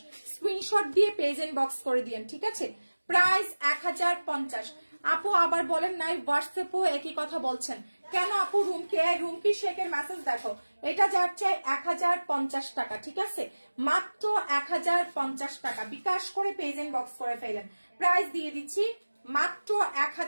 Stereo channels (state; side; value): inverted; both; correlation -1.00